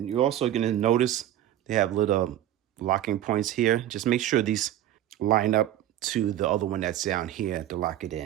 you're also gonna notice they have little locking points here. Just make sure these line up to the other one that's down here to lock it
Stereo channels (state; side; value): quieter; left; 12.5 dB